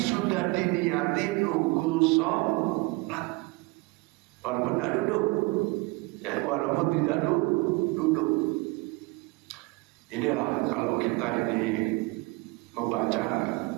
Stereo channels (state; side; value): quieter; left; 24.6 dB